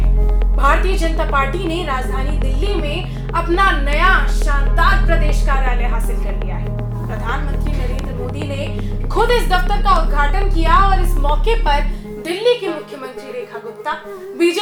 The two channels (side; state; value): both; identical; correlation 1.00